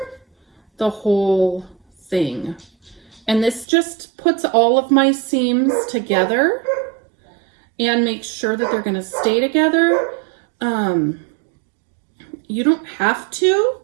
the whole thing. And this just puts all of my seams together and makes sure that they're going to stay together. You don't have to,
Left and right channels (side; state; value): left; drops out; at 3.7 s